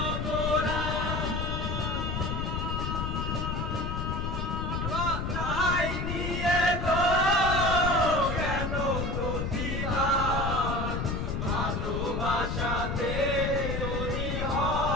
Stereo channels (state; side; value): noise; left; rumble, 2 dB below the sound